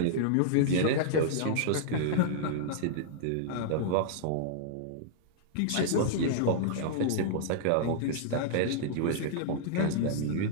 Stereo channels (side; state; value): both; different; correlation -0.01